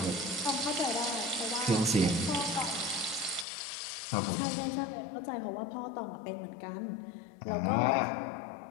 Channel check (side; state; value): right; drops out; at 3.5 s